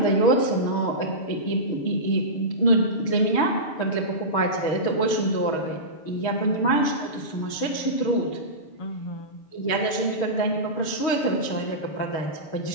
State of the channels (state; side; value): late; right; 6.4 ms